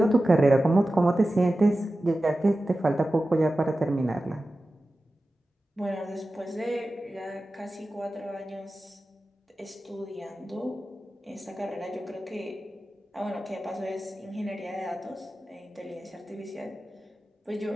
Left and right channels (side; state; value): both; normal; correlation 0.94